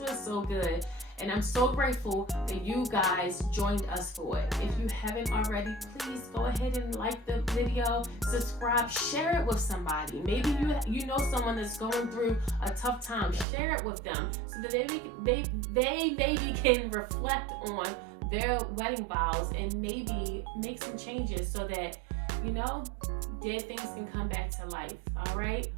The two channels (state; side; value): drops out; left; at 13.5 s